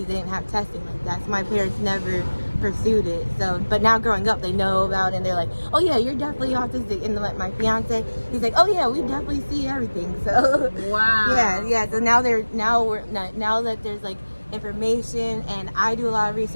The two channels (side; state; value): both; inverted; correlation -1.00